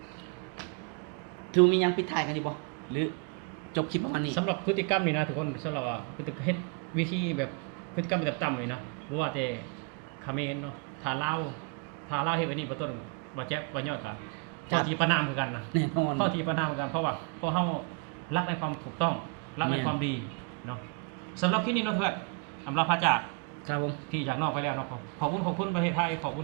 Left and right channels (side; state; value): left; quieter; 31.6 dB